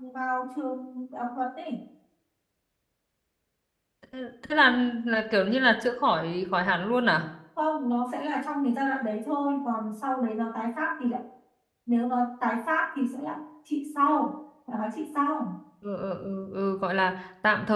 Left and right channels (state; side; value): identical; both; correlation 1.00